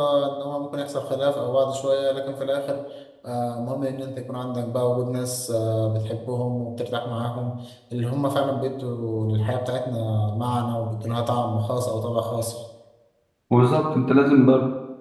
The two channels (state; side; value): identical; both; correlation 1.00